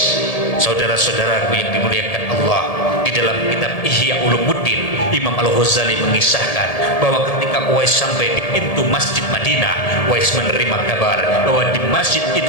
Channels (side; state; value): right; late; 1.8 ms